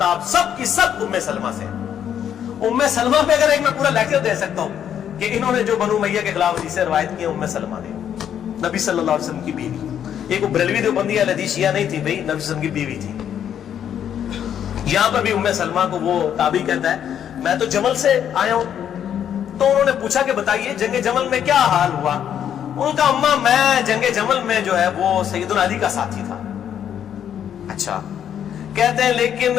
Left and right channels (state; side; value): quieter; right; 9.4 dB